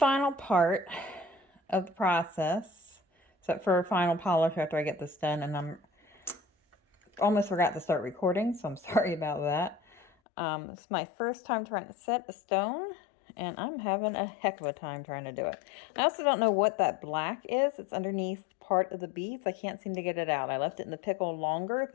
part of the process, except for final polish after I get this done, and I'm almost forgot to start recording, so I'm sorry about that. It's my first time trying to set a stone, and I'm having a heck of a time trying to do it. I also don't know what that black is. It's underneath part of the beads. I can't seem to get it out. I left it in the pickle longer,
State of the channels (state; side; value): drops out; right; at 10.1 s